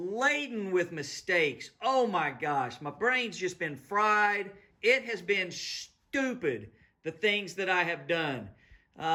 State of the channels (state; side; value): identical; both; correlation 1.00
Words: with mistakes. Oh my gosh, my brain's just been fried. It has been stupid, the things that I have done.